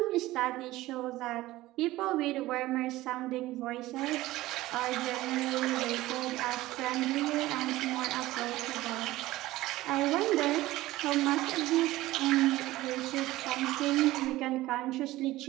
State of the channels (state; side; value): quieter; left; 17.3 dB